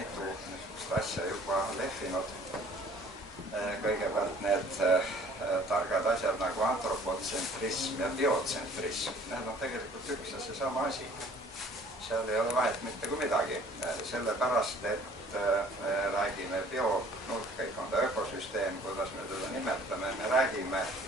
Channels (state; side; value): normal; both; correlation 0.53